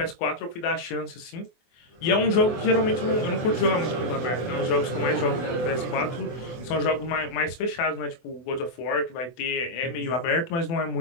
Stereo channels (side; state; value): right; late; 24 ms